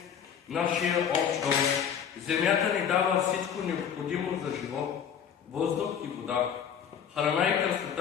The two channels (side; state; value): right; quieter; 8.1 dB